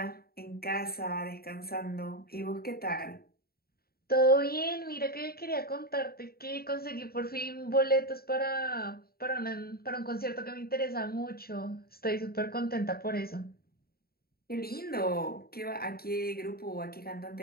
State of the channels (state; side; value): late; right; 0.44 ms